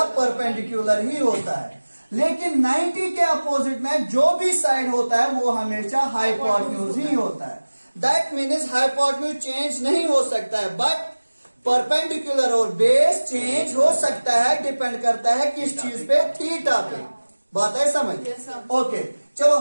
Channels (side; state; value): both; inverted; correlation -1.00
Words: परपेंडिकुलर ही होता है। लेकिन 90 के अपोजिट में जो भी साइड होता है वो हमेशा हाइपोटेन्यूज ही होता है। दैट मीन्स हाइपोटेन्यूज चेंज नहीं हो सकता है, बट परपेंडिकुलर और बेस चेंज हो सकता है। डिपेंड करता है किस चीज पे, थीटा पे। बात है समझ? ओके, चलो